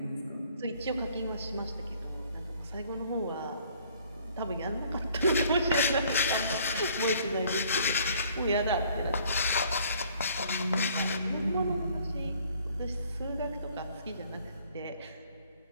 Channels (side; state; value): both; inverted; correlation -0.59